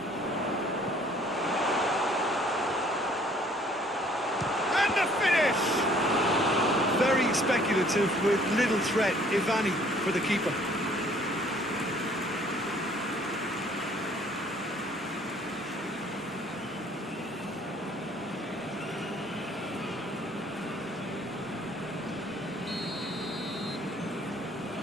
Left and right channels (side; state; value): both; normal; correlation 0.58